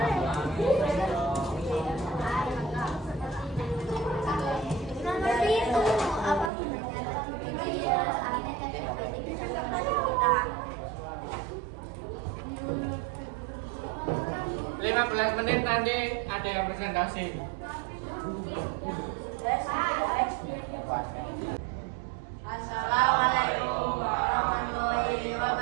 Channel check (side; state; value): left; drops out; at 6.5 s